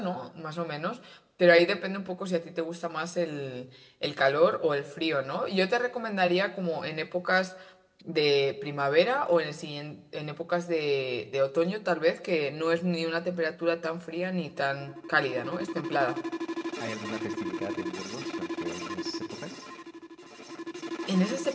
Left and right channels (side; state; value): both; identical; correlation 1.00